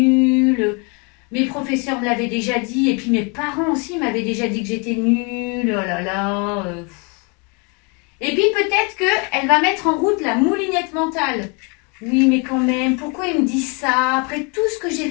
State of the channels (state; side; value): quieter; right; 33.0 dB